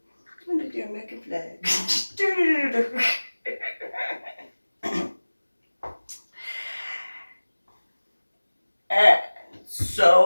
I'm gonna do American flag. And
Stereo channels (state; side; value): inverted; both; correlation -1.00